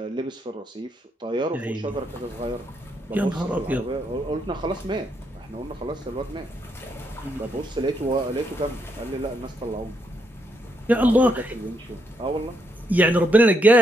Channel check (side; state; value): both; normal; correlation 0.77